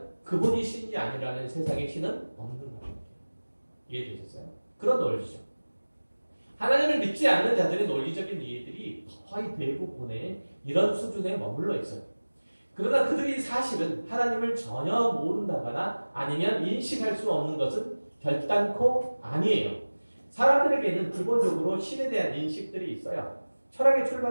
그분이 신이 아니라는 세상에 신은 없는 거예요. 이해되셨어요? 그런 논리죠. 하나님을 믿지 않는 자들의 논리적인 이해들이 거의 대부분의 이런 수준에 머물러 있어요. 그러나 그들이 사실은 하나님을 전혀 모른다거나 아니면 인식할 수 없는 것은 결단코 아니에요. 사람들에게는 기본적으로 신에 대한 인식들이 있어요. 철학의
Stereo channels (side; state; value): both; inverted; correlation -1.00